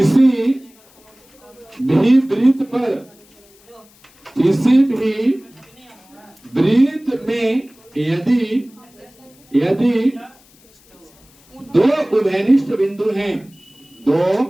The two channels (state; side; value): noise; left; hiss, 29 dB below the sound